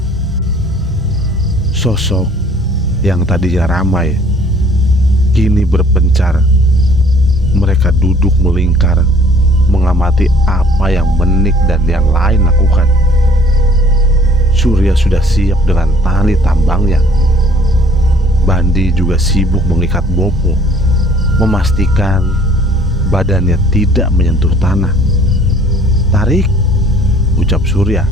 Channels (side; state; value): both; normal; correlation 0.56